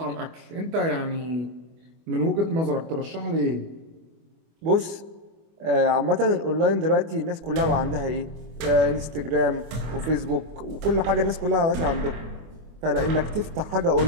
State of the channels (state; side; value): late; left; 25 ms